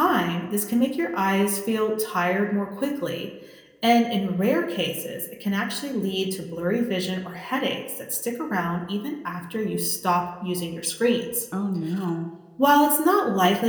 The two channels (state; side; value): identical; both; correlation 1.00